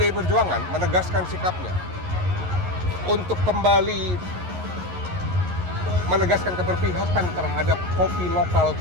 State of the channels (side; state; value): left; late; 11 ms